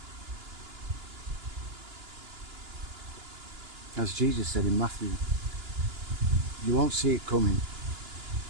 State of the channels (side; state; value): left; late; 2.9 ms